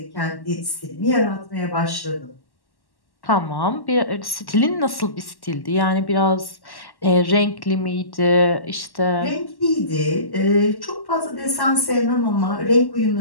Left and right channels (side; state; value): right; late; 1.1 ms